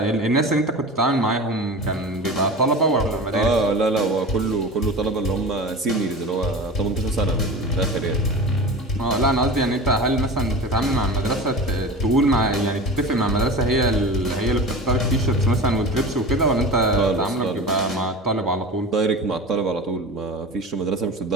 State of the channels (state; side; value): normal; both; correlation 0.32